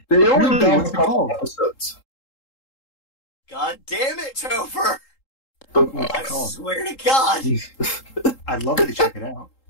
they only done a couple episodes. God damn it, Topher! But, I swear to God. I'd love to check it out.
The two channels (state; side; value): late; right; 3.8 ms